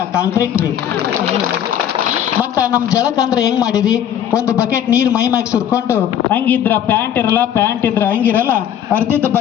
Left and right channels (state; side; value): quieter; right; 9.9 dB